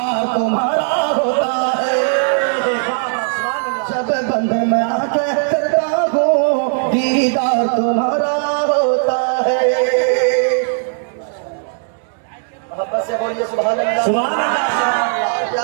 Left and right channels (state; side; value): silent; left; 68 dB below the other